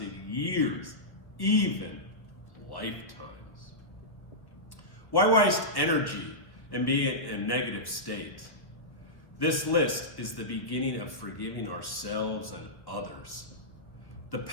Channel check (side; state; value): right; late; 1.3 ms